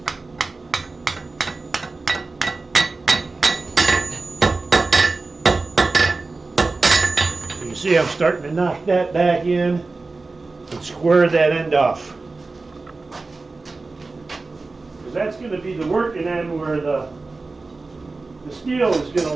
You see I'm starting to knock that back in and square that end off. Because that's going to be the working end where the steel is going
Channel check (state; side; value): quieter; left; 3.7 dB